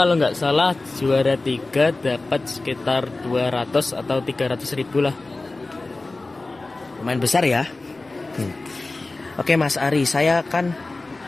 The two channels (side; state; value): right; quieter; 3.2 dB